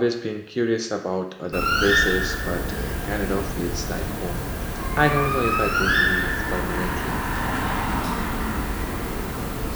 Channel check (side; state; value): both; identical; correlation 1.00